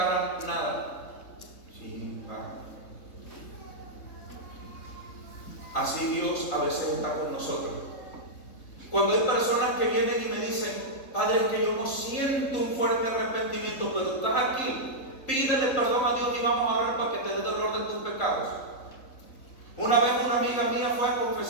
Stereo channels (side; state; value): right; late; 3.8 ms